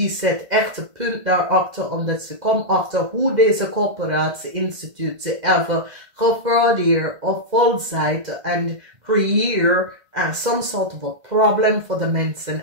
zet echt een punt daarachter, omdat ze komt achter hoe deze corporatie institutie even gefraudeerd of volzijde en creëer some sort of a problem voor de mensen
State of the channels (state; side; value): late; left; 2.0 ms